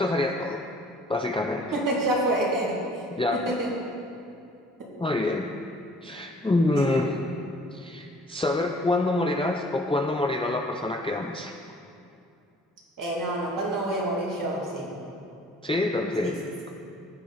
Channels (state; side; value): normal; both; correlation 0.53